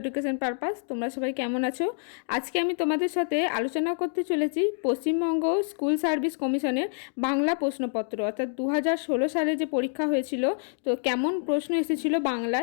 purpose. তোমরা সবাই কেমন আছো? আজকে আমি তোমাদের সাথে আলোচনা করতে চলেছি পশ্চিমবঙ্গ স্কুল সার্ভিস কমিশনের বাংলা প্রশ্নপত্র, অর্থাৎ 2016 সালে যে পরীক্ষা হয়েছিল, তো কেমন প্রশ্ন এসেছিল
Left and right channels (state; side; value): silent; right; digital silence